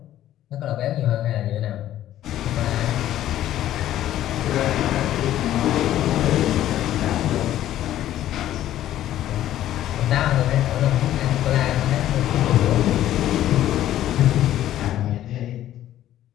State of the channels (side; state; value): right; quieter; 12.7 dB